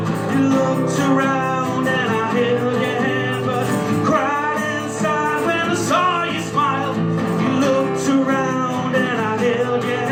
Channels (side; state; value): both; identical; correlation 1.00